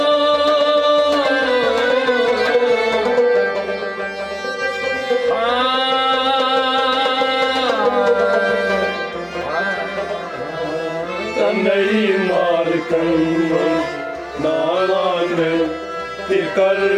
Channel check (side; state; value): both; identical; correlation 1.00